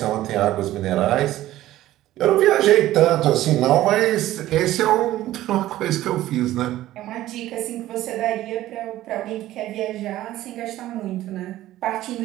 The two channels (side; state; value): left; quieter; 14.7 dB